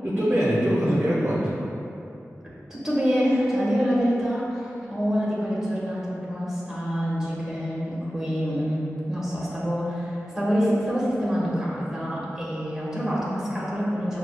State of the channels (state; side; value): normal; both; correlation 0.94